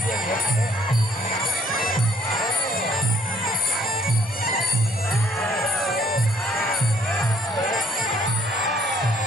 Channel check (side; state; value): both; normal; correlation 0.62